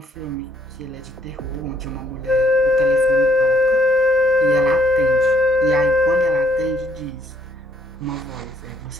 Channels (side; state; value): both; normal; correlation 0.66